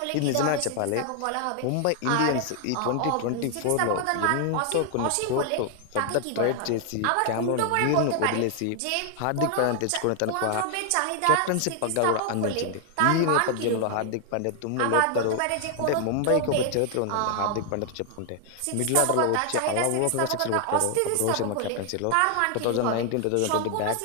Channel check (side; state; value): both; different; correlation 0.00